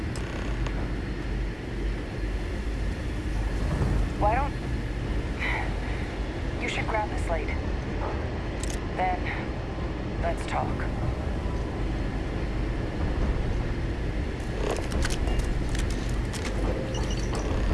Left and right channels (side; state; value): both; identical; correlation 1.00